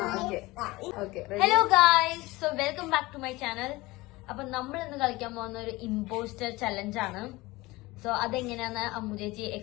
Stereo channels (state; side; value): quieter; right; 20.9 dB